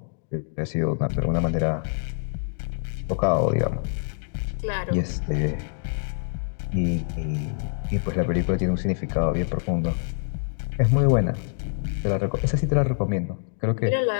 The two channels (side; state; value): right; silent; digital silence